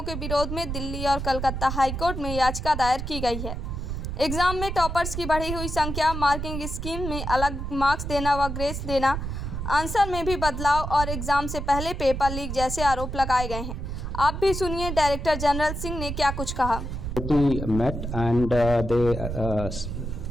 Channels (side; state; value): right; noise; rumble, 5 dB below the sound